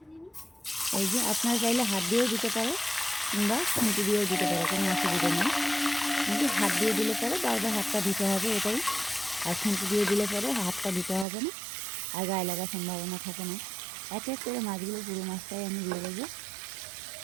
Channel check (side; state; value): left; drops out; at 11.2 s